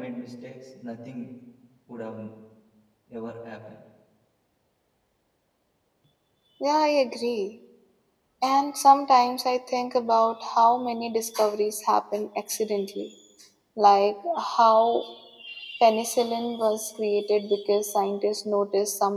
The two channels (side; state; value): both; identical; correlation 1.00